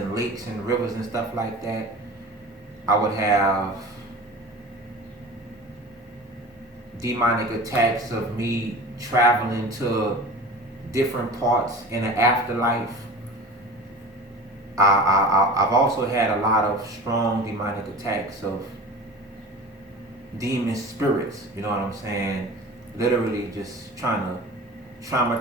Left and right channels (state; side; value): normal; both; correlation 0.37